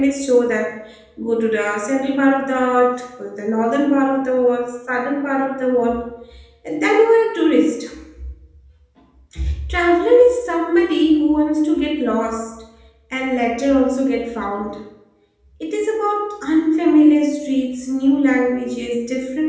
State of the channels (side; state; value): both; identical; correlation 1.00